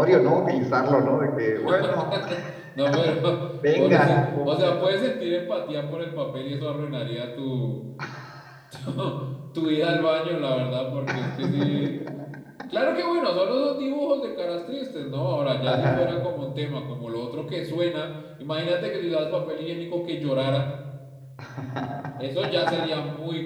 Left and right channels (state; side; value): identical; both; correlation 1.00